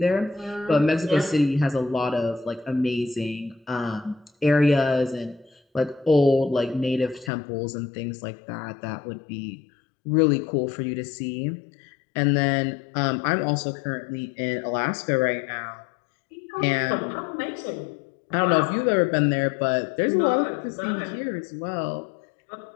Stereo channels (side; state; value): right; drops out; at 7.3 s